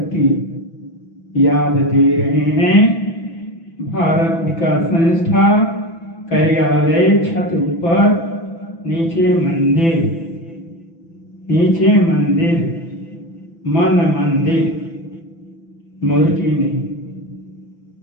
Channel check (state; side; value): late; right; 6.0 ms